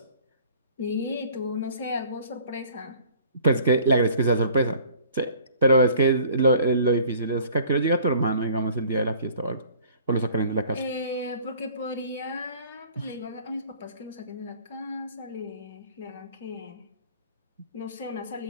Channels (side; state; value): both; inverted; correlation -0.51